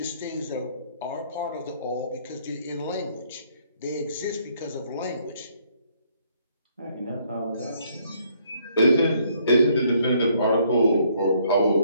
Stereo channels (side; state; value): both; inverted; correlation -0.67